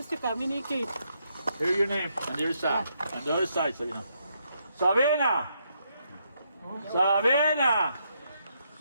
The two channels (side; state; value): both; inverted; correlation -0.77